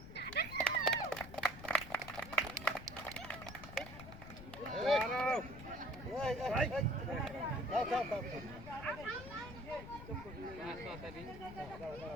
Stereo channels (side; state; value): left; noise; rumble, 13 dB below the sound